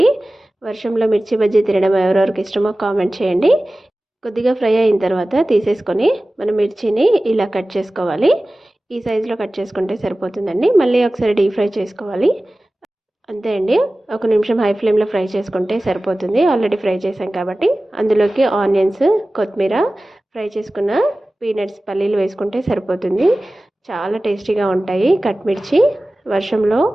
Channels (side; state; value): both; normal; correlation 0.97